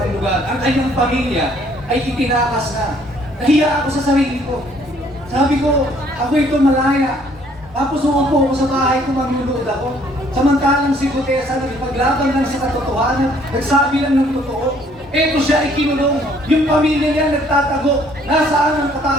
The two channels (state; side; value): normal; both; correlation 0.62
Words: lugar. Ang kanyang pamilya ay itinakas na. Nahiya ako sa sarili ko. Sabi ko, ako ito malaya. Tapos umupo ako sa bahay ko, magluluod ako. Samantalang si Guteza nagpaglaban lang sa katotohanan, nagsabi lang ng totoo. Eto siya ay kinulong. Yung pamilya niya nagtatago. Nasaan ang